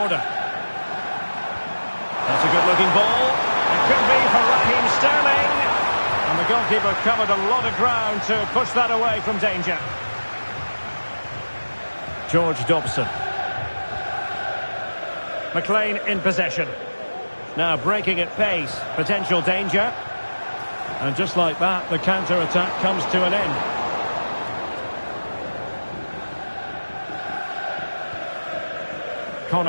That's a good-looking ball. It could be for Raheem Sterling. And the goalkeeper covered a lot of ground to push that away from danger. George Dobson. McLean in possession. Now breaking at pace. Potential danger. And just like that, the counter-attack comes to an end.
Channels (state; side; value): inverted; both; correlation -1.00